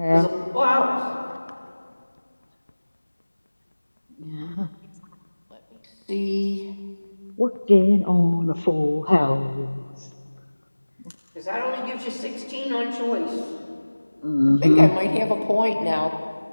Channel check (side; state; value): both; inverted; correlation -1.00